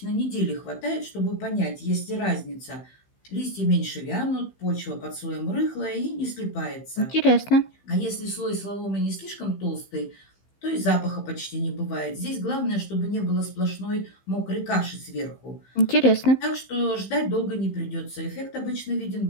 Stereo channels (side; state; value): right; late; 15 ms